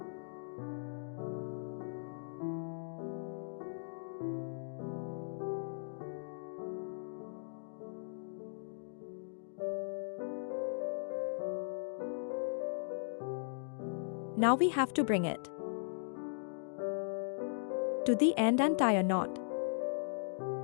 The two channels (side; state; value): right; silent; digital silence